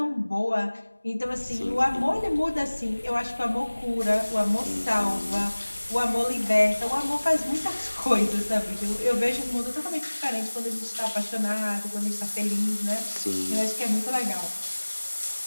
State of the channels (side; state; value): both; inverted; correlation -1.00